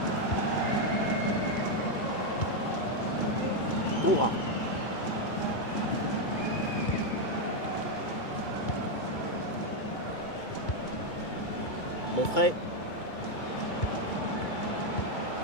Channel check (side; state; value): right; late; 2.3 ms